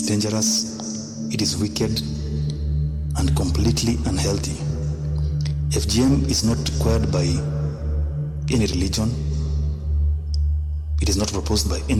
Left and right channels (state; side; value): identical; both; correlation 1.00